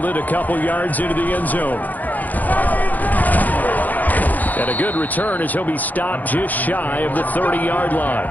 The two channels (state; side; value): late; right; 0.082 ms